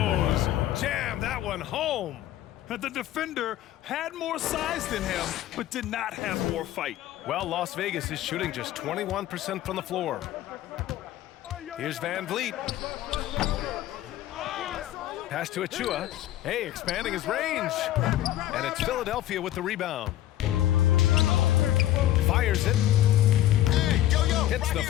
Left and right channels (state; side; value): quieter; right; 13.6 dB